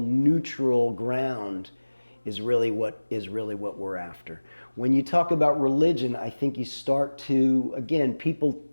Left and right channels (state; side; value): inverted; both; correlation -1.00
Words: ground is really what we're after. When you talk about religion, I think you start to, again, people